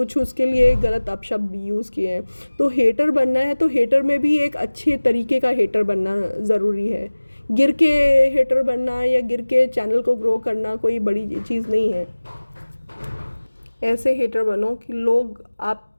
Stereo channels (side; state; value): both; inverted; correlation -1.00